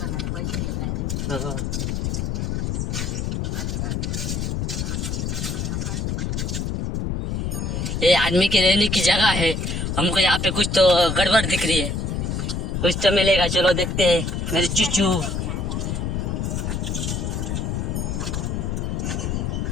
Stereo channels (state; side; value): noise; left; rumble, 1 dB below the sound